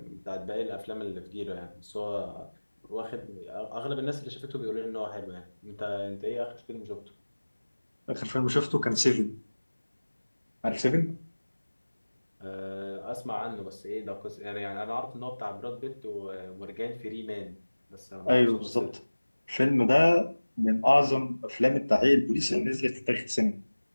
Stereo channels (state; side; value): inverted; both; correlation -1.00